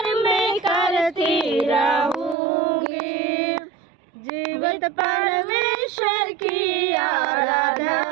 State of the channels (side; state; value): left; drops out; at 2.4 s